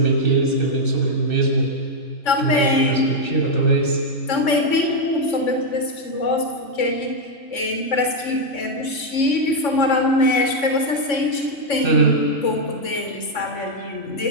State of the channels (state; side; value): late; right; 3.6 ms